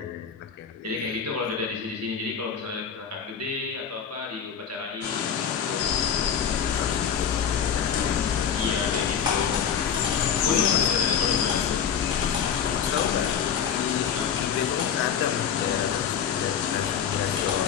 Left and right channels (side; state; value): right; quieter; 7.8 dB